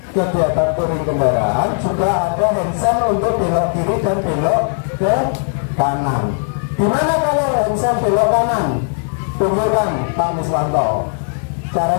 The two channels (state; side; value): silent; right; 68 dB below the other